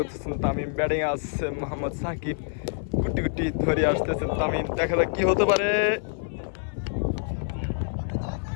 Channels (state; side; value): silent; right; 59 dB below the other